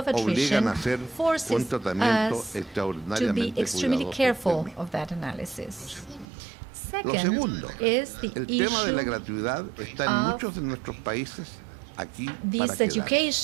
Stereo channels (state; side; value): drops out; left; at 6.2 s